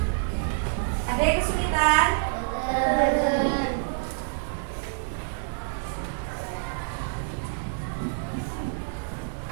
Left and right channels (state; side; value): silent; left; digital silence